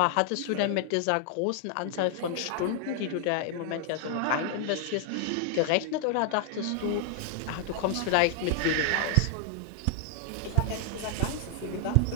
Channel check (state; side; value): different; both; correlation 0.00